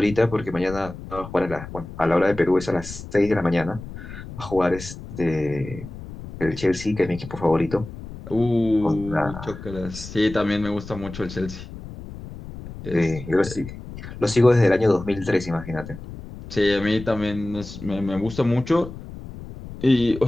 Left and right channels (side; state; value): left; noise; rumble, 13 dB below the sound